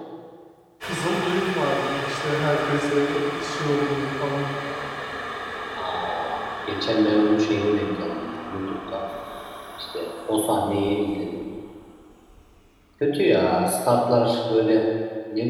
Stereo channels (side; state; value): both; identical; correlation 1.00